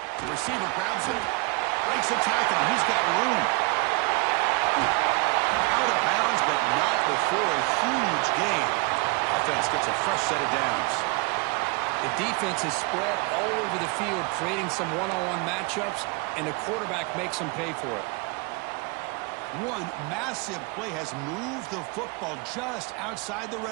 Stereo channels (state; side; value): quieter; left; 27.8 dB